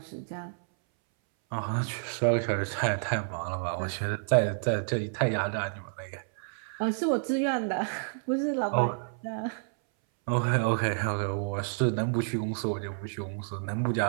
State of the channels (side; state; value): left; silent; 58 dB below the other